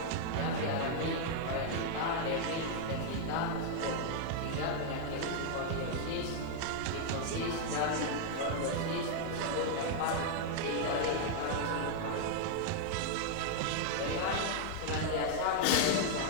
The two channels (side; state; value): both; different; correlation 0.00